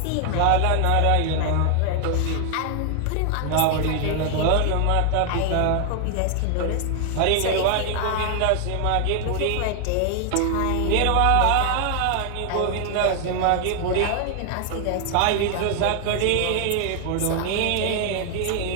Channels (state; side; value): different; both; correlation 0.00